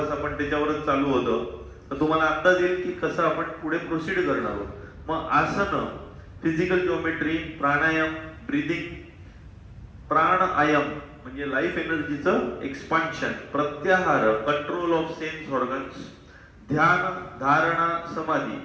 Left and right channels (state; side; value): identical; both; correlation 1.00